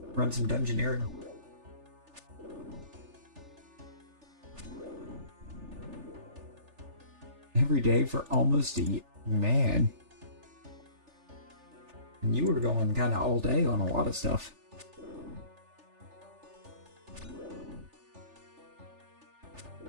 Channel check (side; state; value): left; late; 3.4 ms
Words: some dungeoneering. Every day for almost a year. Man. And you were going kind of all day on a lot of stuff.